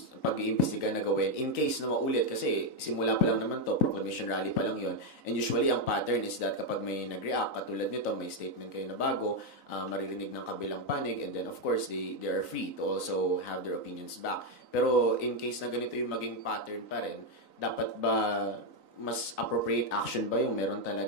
pag-iimbestiga na gawin in case na maulit? Kasi simula pa lang naman to, proclamation rally pa lang yon. And usually ang pattern is that kapag may nag-react, katulad nito, may statement kayo na bago, maririnig ng kabilang panig, and then of course, they are free to also have their opinions back. Pero in case na ganito yung maging pattern pa rin, dapat ba mas appropriate action ba yung meron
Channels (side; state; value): right; late; 3.9 ms